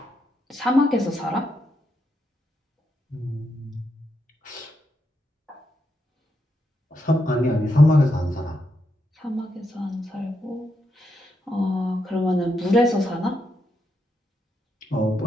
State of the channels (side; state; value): both; normal; correlation 0.82